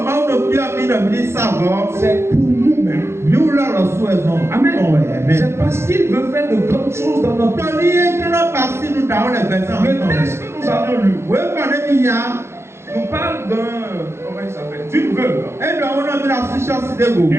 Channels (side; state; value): left; late; 0.13 ms